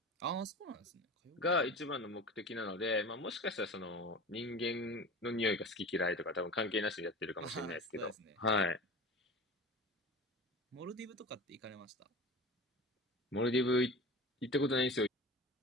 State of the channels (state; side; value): normal; both; correlation 0.34